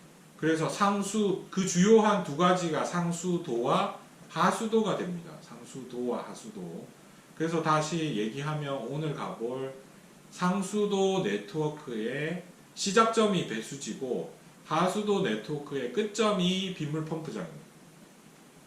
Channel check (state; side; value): identical; both; correlation 1.00